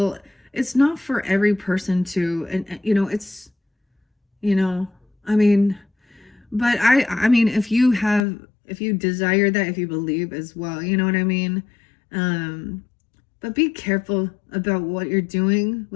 It's not for every person to, and you know, it's, you know, I mean, but I mean, if you desire that, if you believe as well, you know what I mean? But be careful about what you're doing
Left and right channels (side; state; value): right; drops out; at 8.2 s